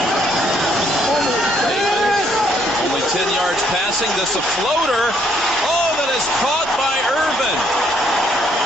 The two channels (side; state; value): both; normal; correlation 0.69